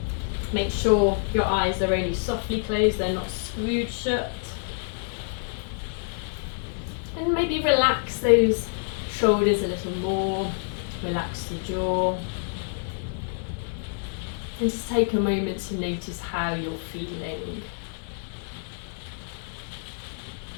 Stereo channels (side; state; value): right; silent; digital silence